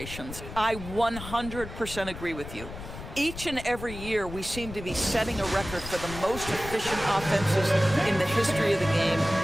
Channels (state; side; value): noise; left; rumble, 11 dB below the sound